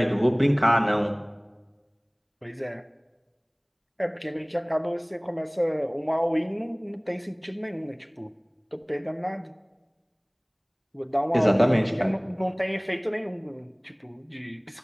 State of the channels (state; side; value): identical; both; correlation 1.00